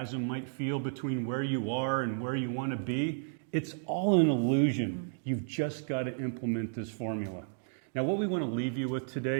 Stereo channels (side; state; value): left; silent; digital silence